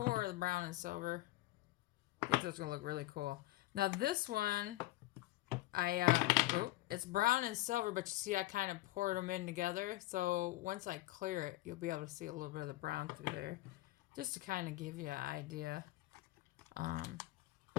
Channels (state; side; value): quieter; right; 18.0 dB